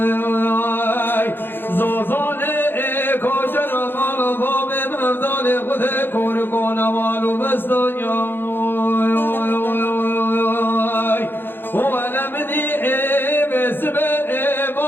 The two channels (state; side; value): late; right; 0.10 ms